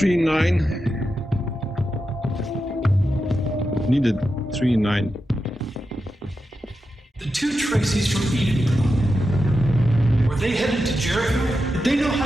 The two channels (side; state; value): both; normal; correlation 0.89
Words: nine. Needed 3-9. The two Tracys from Eden. Were they headed to Jericho? Did they know how